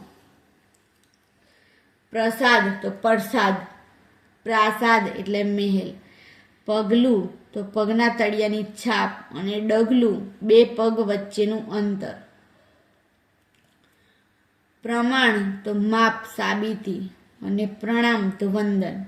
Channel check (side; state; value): both; identical; correlation 1.00